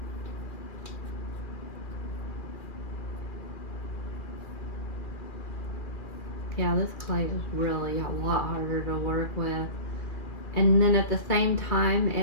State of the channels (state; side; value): late; right; 2.4 ms